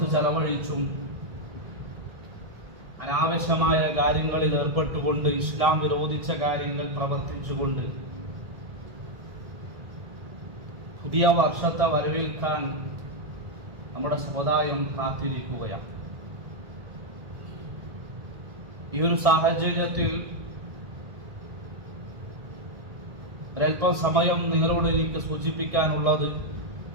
ചെലവഴിച്ചും അനാവശ്യമായ കാര്യങ്ങളിൽ ഏർപ്പെട്ടുകൊണ്ട് ഇസ്ലാം വിരോധിച്ച കാര്യങ്ങൾ പ്രവർത്തിച്ചുകൊണ്ട് പുതിയ വർഷത്തെ വരവേൽക്കാൻ നമ്മുടെ സമുദായം കാത്തിരിക്കുകയാണ്. ഈ ഒരു സാഹചര്യത്തിൽ ഒരൽപ്പം സമയം നിങ്ങളോട് എനിക്ക് സൂചിപ്പിക്കാനുള്ളത്,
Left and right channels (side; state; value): left; late; 1.7 ms